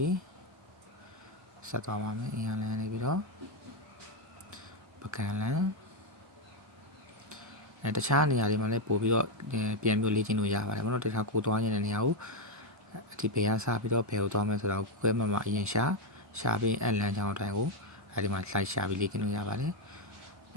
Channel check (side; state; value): both; normal; correlation 0.03